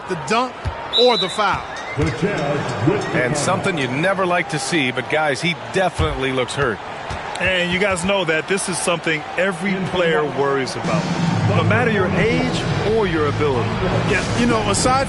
the dunk or the foul. And something you never like to see, but guys, he definitely looks hurt. And you guys know that this is something every player worries about, no matter your age or your ability. Yeah, you know, aside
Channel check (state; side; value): identical; both; correlation 1.00